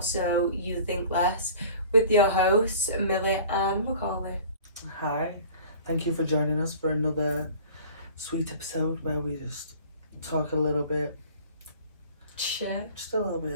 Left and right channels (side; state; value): both; inverted; correlation -0.45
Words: you think less, with your hosts, Millie and Macaulay. Hi, thank you for joining us for another sweet episode where we just talk a little bit, Shit. just a little